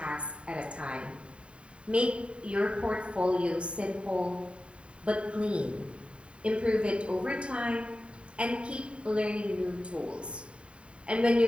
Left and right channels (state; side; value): late; left; 0.058 ms